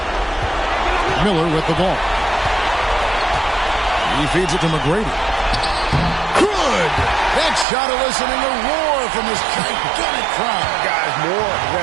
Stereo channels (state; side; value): drops out; left; at 7.7 s